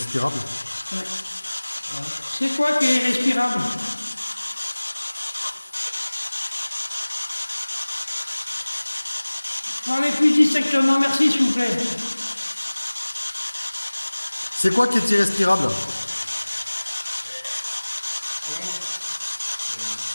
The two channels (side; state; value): both; inverted; correlation -1.00